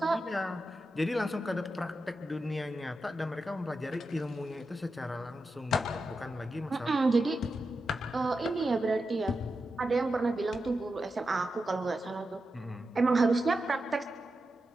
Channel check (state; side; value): normal; both; correlation 0.89